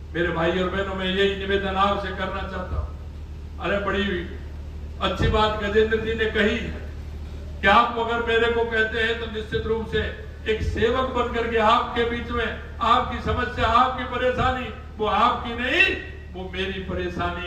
मेरे भाई और बहनों, में यही निवेदन आपसे करना चाहता हूँ। अरे बड़ी अच्छी बात गजेंद्र जी ने कही कि आप अगर मेरे को कहते हैं तो निश्चित रूप से एक सेवक बनकर के आपके बीच में, आपकी समस्या, आपकी परेशानी वो आपकी नहीं, वो मेरी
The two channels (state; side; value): identical; both; correlation 1.00